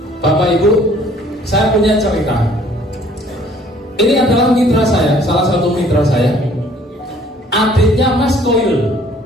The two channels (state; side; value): normal; both; correlation 0.57